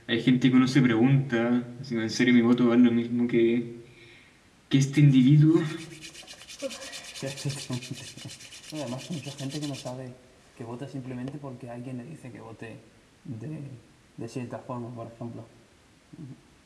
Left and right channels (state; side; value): identical; both; correlation 1.00